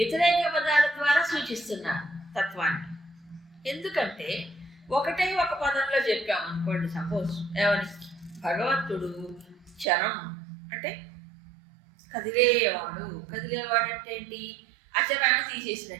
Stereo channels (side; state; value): left; drops out; at 9.9 s